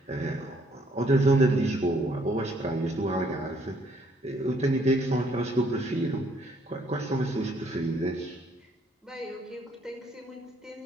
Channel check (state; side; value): normal; both; correlation 0.66